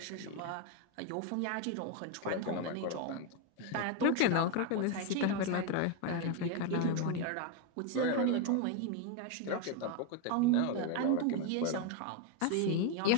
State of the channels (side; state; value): both; different; correlation 0.02